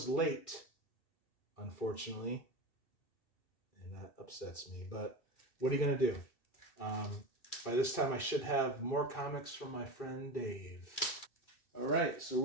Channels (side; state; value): right; late; 2.7 ms